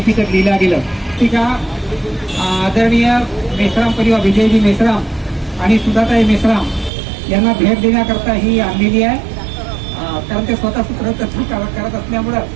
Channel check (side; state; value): left; drops out; at 6.9 s